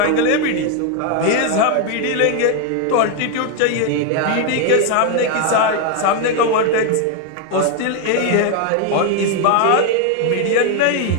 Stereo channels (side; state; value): both; different; correlation 0.01